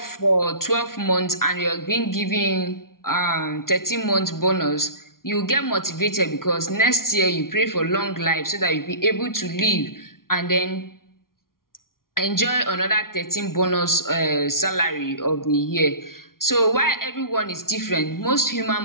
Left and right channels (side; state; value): right; late; 0.92 ms